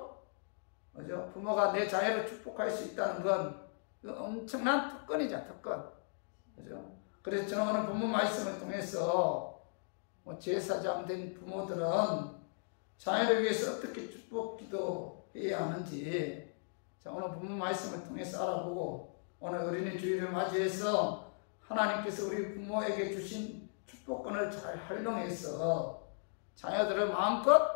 그죠? 부모가 내 자녀를 축복할 수 있다는 건 엄청난 특권이죠, 특권. 그죠? 그래서 저는 오늘 본문 말씀을 통해서 제사장 된 부모들은 자녀를 위해서 어떻게 축복 기도해야 하는지, 자, 오늘 본문 말씀을 통해서 알아보고, 오늘 어린이 주일을 맞이해서 하나님께서 우리 부모에게 주신 축복권을 잘 활용해서 자녀들을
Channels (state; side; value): silent; right; digital silence